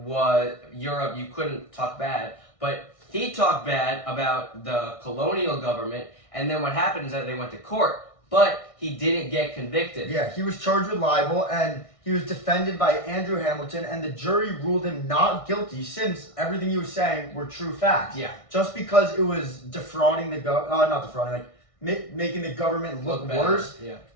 couldn't talk bad, but he talked bad about the colonial government, and then what happened is that they went to court. But he didn't get convicted. Yeah, he was charged with libel, and he was defended by Andrew Hamilton, and the jury ruled him not guilty since everything he was saying were true facts. Yeah. Just because it was defrauding making the government look worse. Yeah.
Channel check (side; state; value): right; late; 1.6 ms